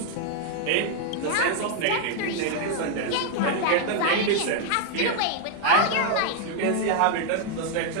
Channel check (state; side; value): different; both; correlation 0.00